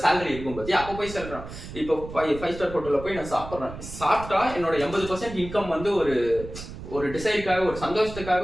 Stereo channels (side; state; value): right; noise; rumble, 12 dB below the sound